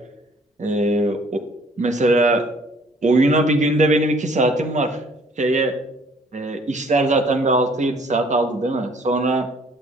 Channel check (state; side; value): normal; both; correlation 0.59